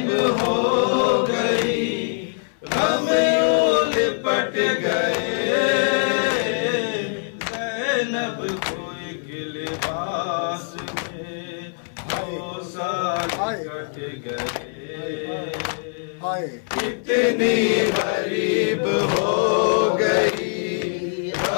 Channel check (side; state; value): right; silent; 64 dB below the other